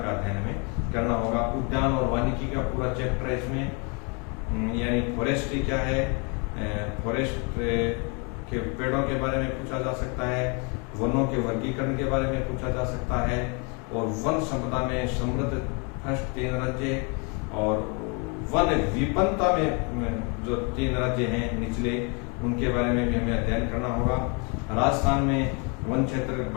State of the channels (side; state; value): right; quieter; 33.8 dB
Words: का अध्ययन हमें करना होगा। उद्यान और वानिकी का पूरा चैप्टर है इसमें, यानी फॉरेस्ट्री क्या है, फॉरेस्ट के पेड़ों के बारे में पूछा जा सकता है, वनों के वर्गीकरण के बारे में पूछा जा सकता है, और वन संपदा में समृद्ध फर्स्ट 3 राज्य और वन विपन्नता में जो 3 राज्य हैं निचले, उनके बारे में भी हमें अध्ययन करना होगा। राजस्थान में वन क्षेत्र